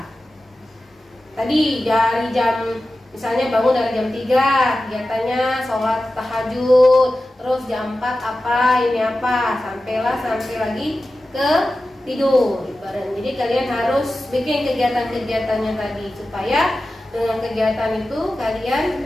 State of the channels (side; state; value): both; normal; correlation 0.94